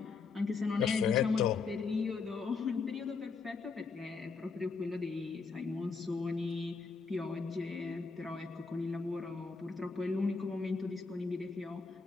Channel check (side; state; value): right; quieter; 4.8 dB